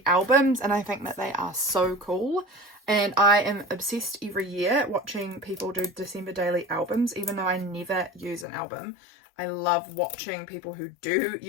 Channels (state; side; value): drops out; right; at 8.5 s